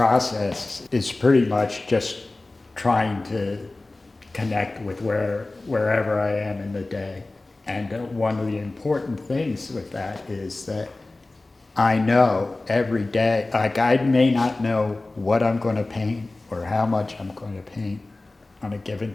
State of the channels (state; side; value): quieter; right; 3.0 dB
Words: is pretty much just trying to connect with wherever I am in the day. And one of the important things with that is that I know every day, like I may not know what I'm going to paint or how much I'm going to paint on a given